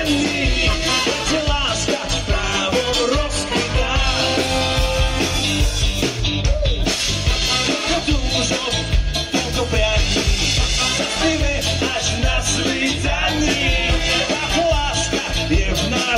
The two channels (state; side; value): identical; both; correlation 1.00